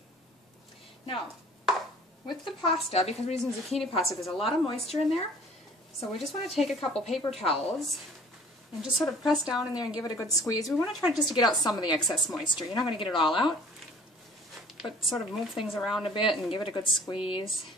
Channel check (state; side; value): normal; both; correlation 0.51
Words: Now, with the pasta, because we're using zucchini pasta, there's a lot of moisture in there, so we just want to take a couple paper towels and just sort of press down in there and give it a good squeeze. We want to try just to get out some of the excess moisture. You're not going to get it all out, but sort of move things around a bit and give it a good squeeze,